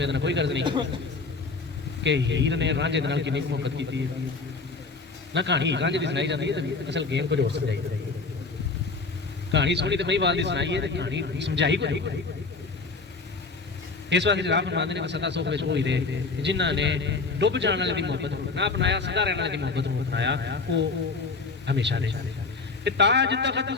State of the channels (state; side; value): quieter; right; 4.1 dB